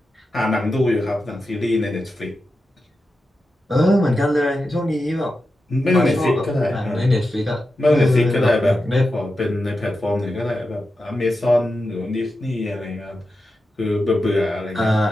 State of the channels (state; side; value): normal; both; correlation 0.90